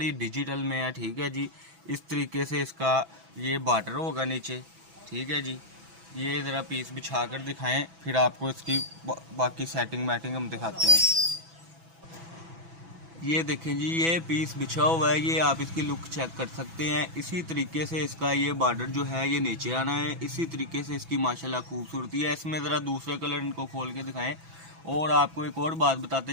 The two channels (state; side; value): late; left; 6.1 ms